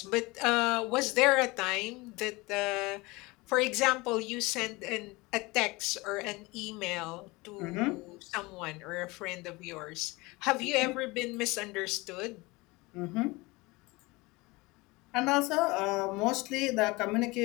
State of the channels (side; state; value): right; quieter; 23.4 dB